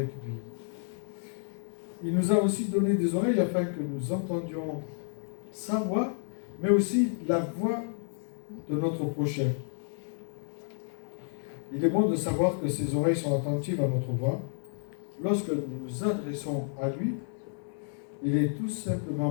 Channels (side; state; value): right; silent; digital silence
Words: lui. Il nous a aussi donné des oreilles afin que nous entendions sa voix, mais aussi la voix de notre prochain. Il est bon de savoir que ses oreilles sont attentives à notre voix. Lorsque nous nous adressons à lui, il est tout